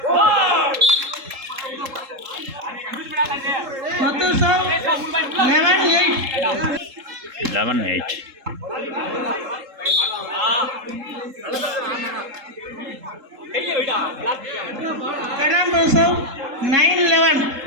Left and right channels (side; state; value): left; late; 3.7 ms